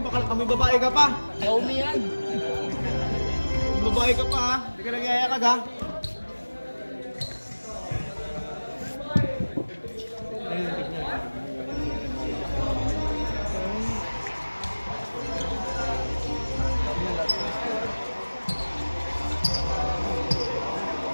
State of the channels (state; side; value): inverted; both; correlation -1.00